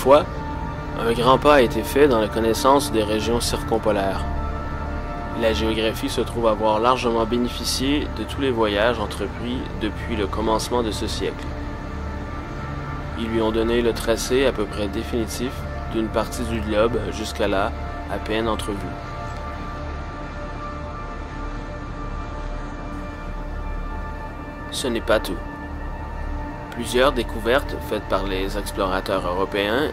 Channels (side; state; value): both; identical; correlation 1.00